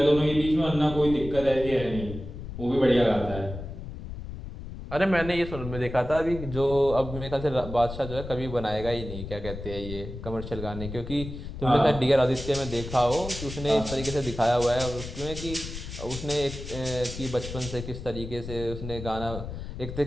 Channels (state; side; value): noise; left; rumble, 9 dB below the sound